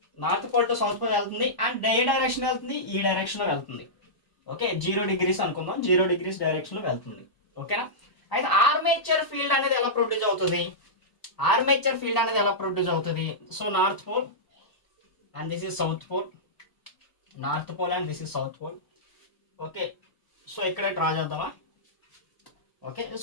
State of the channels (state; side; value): late; right; 1.0 ms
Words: అండ్ ఏ డైరెక్షన్ వెళ్తుంది? ఈ డైరెక్షన్లో వెళ్తుంది. ఓకే, 0 degrees అనుకుందాం, 0 degrees డైరెక్షన్లో వెళ్తుంది. ఓకేనా, అయితే ఆర్మేచర్ ఫీల్డ్ అనేది ఎలా ప్రొడ్యూస్ అవుతుంది? So north pole and this is south pole, north pole and this is south pole. Okay, so ఇక్కడ డ్రా చేద్దామా? ఓకే,